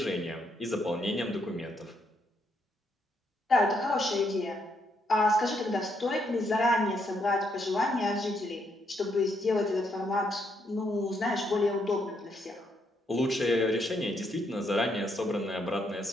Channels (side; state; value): both; normal; correlation 0.75